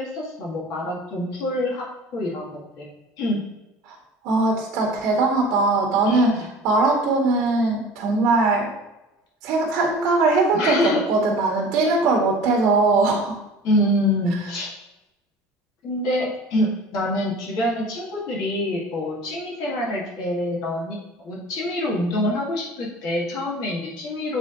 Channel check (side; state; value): both; normal; correlation 0.42